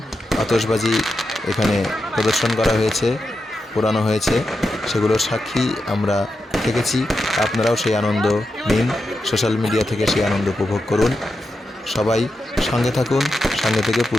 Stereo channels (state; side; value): normal; both; correlation 0.88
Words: আতশবাজি এখানে প্রদর্শন করা হয়েছে, পোড়ানো হয়েছে, সেগুলোর সাক্ষী আমরা থেকেছি। আপনারাও সেই আনন্দ নিন, সোশ্যাল মিডিয়া থেকে সেই আনন্দ উপভোগ করুন। সবাই সঙ্গে থাকুন, সঙ্গে থেকে